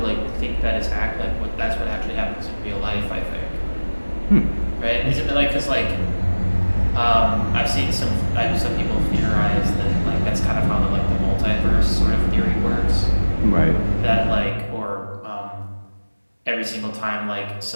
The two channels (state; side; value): inverted; both; correlation -1.00